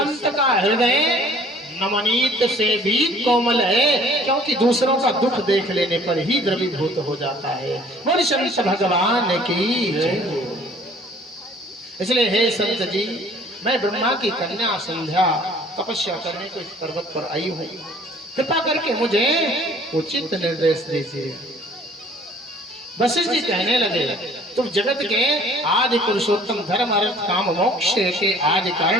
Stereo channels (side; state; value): both; normal; correlation 0.54